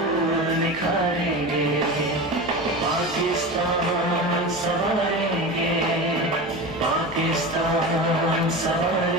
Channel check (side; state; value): left; noise; hum, 20 dB below the sound